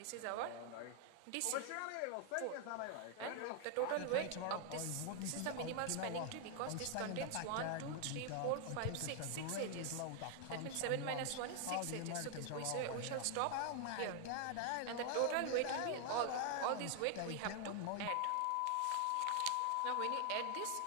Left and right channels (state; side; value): different; both; correlation 0.00